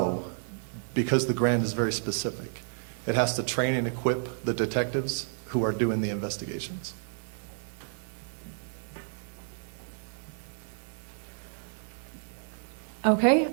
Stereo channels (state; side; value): silent; left; 57 dB below the other